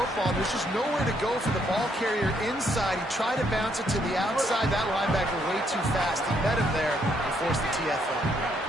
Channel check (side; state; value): both; normal; correlation 0.72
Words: There's just nowhere to go for the ball carrier inside. He tried to bounce it to the outside. That linebacker way too fast. He met him there and forced the TFL.